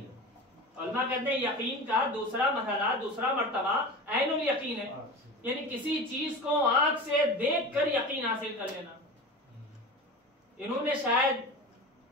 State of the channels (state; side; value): normal; both; correlation 0.31